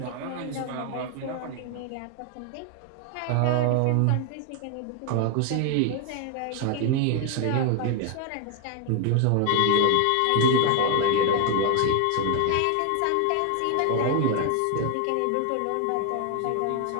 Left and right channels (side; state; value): both; different; correlation 0.01